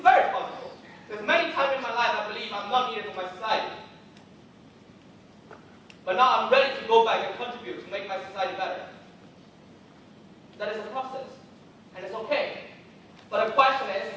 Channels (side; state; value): both; identical; correlation 1.00